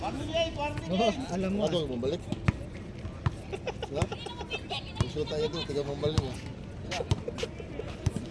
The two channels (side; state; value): both; identical; correlation 1.00